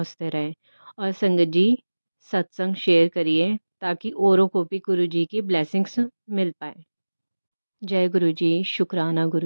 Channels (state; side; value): inverted; both; correlation -1.00